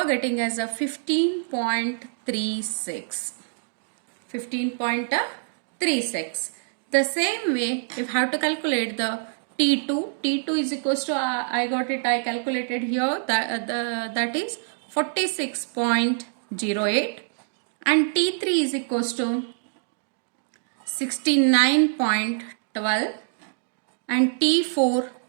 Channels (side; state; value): left; silent; digital silence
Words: getting as a 15.36. 15.36. The same way, you have to calculate the T2. T2 is equals to, I calculated here, that is 46.08. And T3 is equals to 69.12. And T4